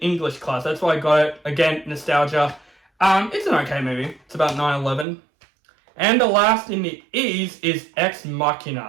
class. That's why I got it. Again, nostalgia. It's an okay movie. It's about 9/11. And the last in the E's is Ex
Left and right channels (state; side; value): drops out; left; at 5.1 s